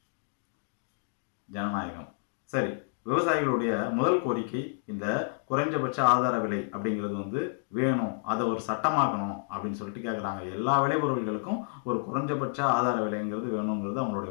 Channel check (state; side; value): silent; right; digital silence